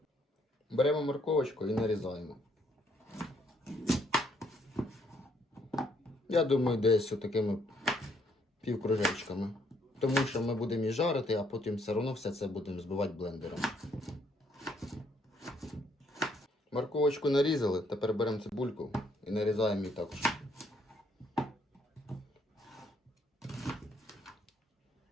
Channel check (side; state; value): both; normal; correlation 0.69